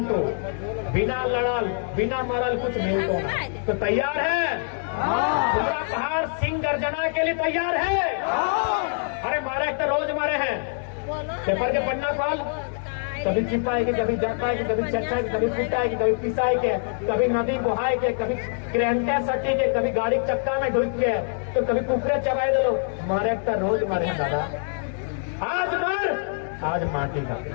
बिना लड़ल बिना मरल कुछ मिलतो ना। तो तैयार है पूरा पहाड़ सिंह गर्जना के लिए तैयार है? अरे मारे तो रोज मारे हैं, पेपर के पन्ना खोल, कभी चिपाए के, कभी जपाए के, कभी चच्चा के, कभी पिटाए के, कभी पिसाए के, कभी नदी बहाए के, कभी क्रेंटे सटी के, कभी गाड़ी चक्का में ढुक के, तो कभी कुकरे चबाए दे लो, मारे तो रोज मारे हैं दादा। आज मर, आज माटी का,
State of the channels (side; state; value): right; silent; 62 dB below the other